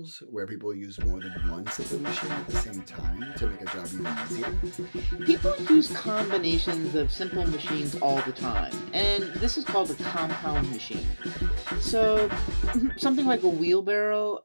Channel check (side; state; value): both; inverted; correlation -1.00